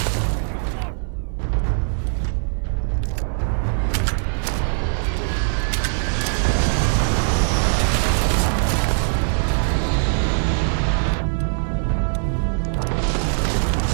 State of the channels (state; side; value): silent; left; 58 dB below the other